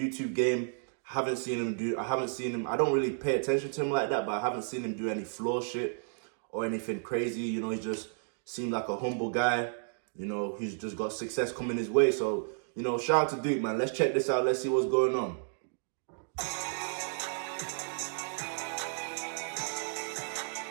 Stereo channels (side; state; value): left; silent; digital silence